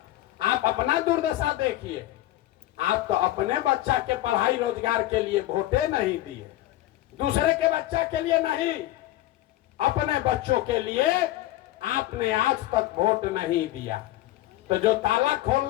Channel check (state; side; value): quieter; right; 15.3 dB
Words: आप अपना दुर्दशा देखिए। आप तो अपने बच्चा के पढ़ाई रोजगार के लिए वोटे नहीं दिए, दूसरे के बच्चा के लिए नहीं, अपने बच्चों के लिए आपने आज तक वोट नहीं दिया। तो जो ताला